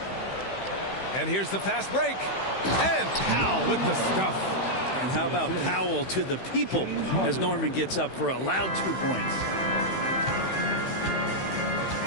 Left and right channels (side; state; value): right; late; 16 ms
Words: And here's the fast break. And Powell with the stuff. And how about Powell to the people as Norman gets up for a loud 2 points.